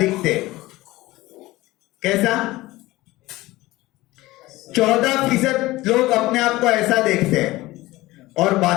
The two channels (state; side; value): quieter; right; 18.7 dB